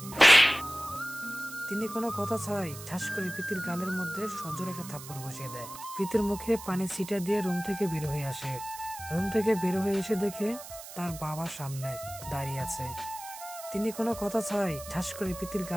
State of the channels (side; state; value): right; noise; hiss, 13 dB below the sound